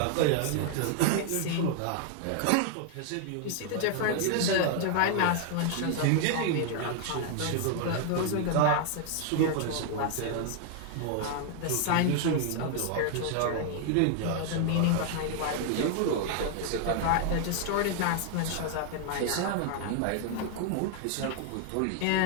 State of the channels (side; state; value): both; different; correlation 0.00